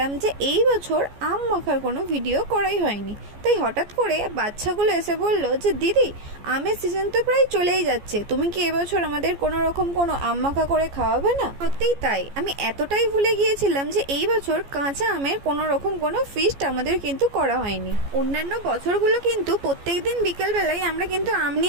যে এই বছর আম মাখার কোনো ভিডিও করাই হয়নি। তাই হঠাৎ করে বাচ্চাগুলো এসে বলল যে দিদি, আমের সিজন তো প্রায় চলেই যাচ্ছে, তুমি কি এবছর আমাদের কোনো রকম কোনো আম মাখা করে খাওয়াবে না? সত্যিই তাই, আমি এতটাই ভুলে গিয়েছিলাম যে এই বছর কাঁচা আমের কোনো রকম কোনো ফিস্ট আমাদের কিন্তু করা হয়নি। অন্যান্য বছরগুলো কিন্তু প্রত্যেক দিন বিকেলবেলায় আমরা কিন্তু আম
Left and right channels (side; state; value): left; late; 14 ms